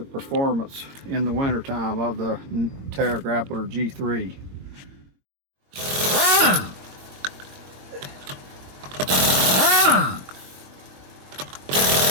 performance in the wintertime of the Terra Grappler G3.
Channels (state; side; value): late; left; 22 ms